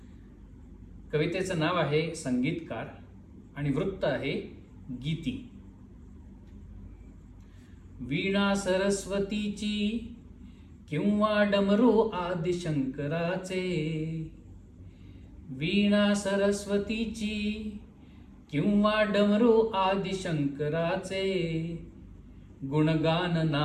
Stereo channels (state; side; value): identical; both; correlation 1.00